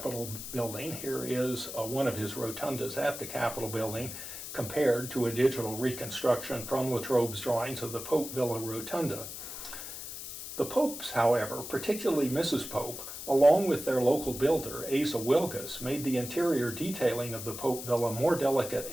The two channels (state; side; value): noise; left; hiss, 9 dB below the sound